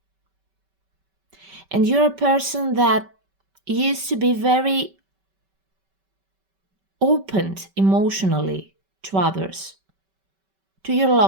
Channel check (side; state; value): left; late; 5.2 ms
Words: and you're a person that used to be very opened emotionally to others, to your